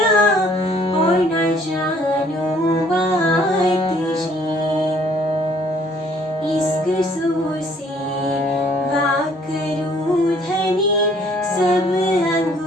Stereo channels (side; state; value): both; normal; correlation 0.60